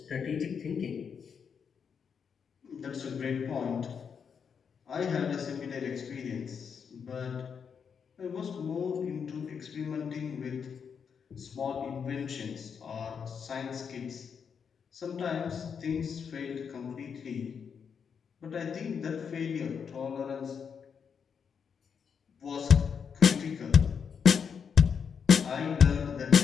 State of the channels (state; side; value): quieter; right; 6.7 dB